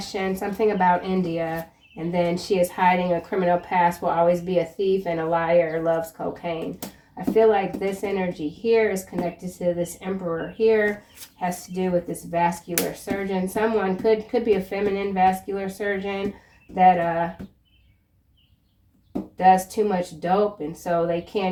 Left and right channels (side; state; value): both; identical; correlation 1.00